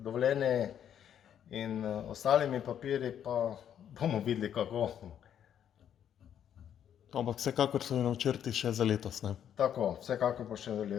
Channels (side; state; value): right; quieter; 9.5 dB